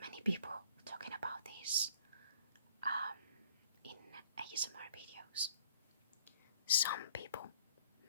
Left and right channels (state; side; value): inverted; both; correlation -0.57